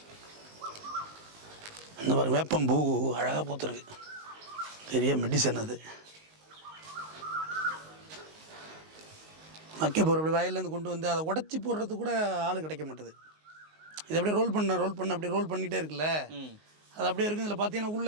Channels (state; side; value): late; left; 19 ms